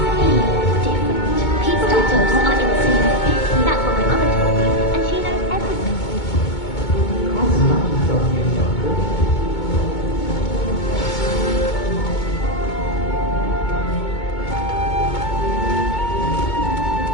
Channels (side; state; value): right; late; 2.2 ms